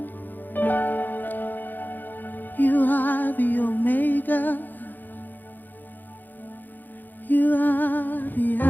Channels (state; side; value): late; right; 0.088 ms